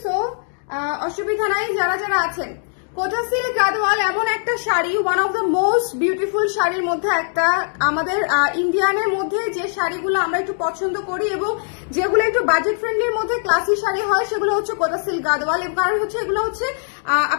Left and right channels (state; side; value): silent; right; 65 dB below the other